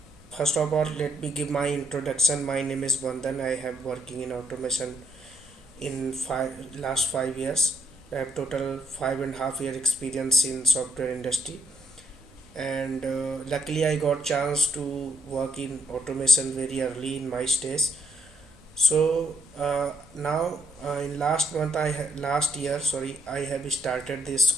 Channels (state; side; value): normal; both; correlation 0.75